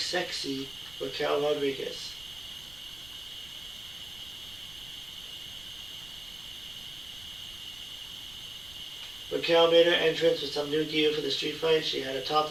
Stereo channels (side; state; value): right; noise; rumble, 21 dB below the sound